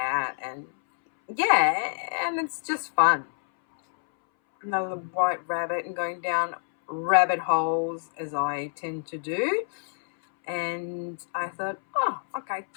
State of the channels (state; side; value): silent; right; 60 dB below the other